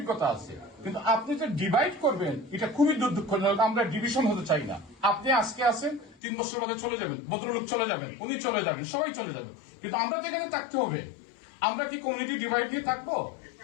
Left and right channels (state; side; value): drops out; right; at 6.2 s